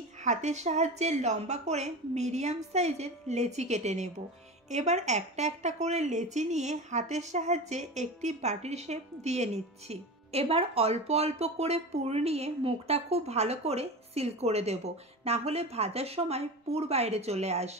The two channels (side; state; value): both; normal; correlation 0.28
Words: হাতের সাহায্যে লম্বা করে মিডিয়াম সাইজের লেচি কেটে নেব। এবার একটা একটা করে লেচি নিয়ে হাতের সাহায্যে একটি বাটির শেপ দিয়ে নিচ্ছি। এবার অল্প অল্প করে পুর নিয়ে মুখটা খুব ভালো করে সিল করে দেব, না হলে ভাজার সময় পুর বাইরে চলে